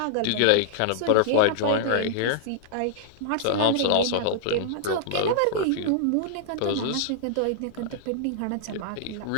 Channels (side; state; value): both; different; correlation -0.01